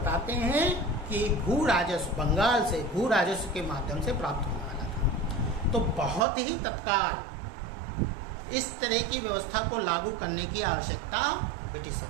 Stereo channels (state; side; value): drops out; left; at 6.2 s